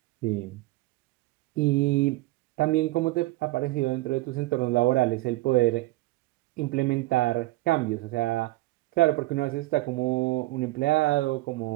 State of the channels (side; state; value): left; quieter; 19.2 dB